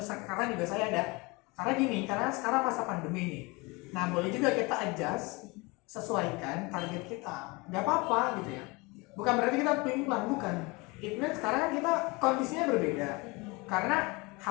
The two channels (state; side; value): quieter; right; 25.7 dB